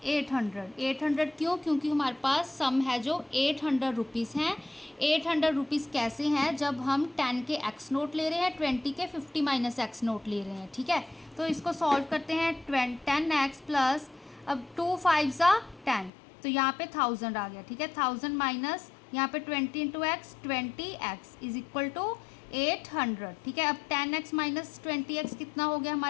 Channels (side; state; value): right; drops out; at 16.1 s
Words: 800। 800 क्यों, क्योंकि हमारे पास सम है जो 800 रुपीज़ हैं। 800 रुपीज़ कैसे हैं, जब हम 10 के एक्स नोट ले रहे हैं, 20 के 50 माइनस एक्स नोट ले रहे हैं, ठीक है। तो इसको सॉल्व करते हैं, 10x प्लस, अब 2 5 ज़ा 10, तो यहाँ पे 1000 आ गया, ठीक है। 1000 माइनस यहाँ पे 20 into x 20x is equal to 800, ठीक है। अब 10x माइनस 20x कितना हो गया